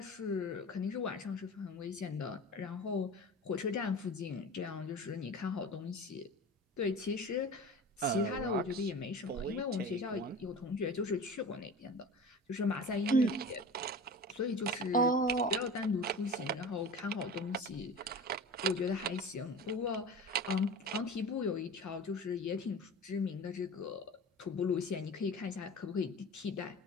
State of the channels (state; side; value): normal; both; correlation 0.35